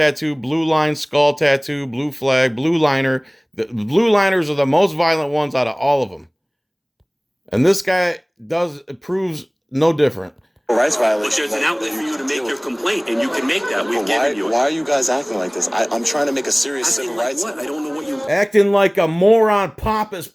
blue line, skull tattoo, blue flag, blue liner. The blue liners are the most violent ones out of all of them. And this guy proves no different. Rights violation. But there's an outlet for you to make your complaint, and you can make that. We've given you it. Why are you guys acting like this? I'm trying to make a serious civil rights. What? I don't know what you... Acting like a moron, pompous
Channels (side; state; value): both; identical; correlation 1.00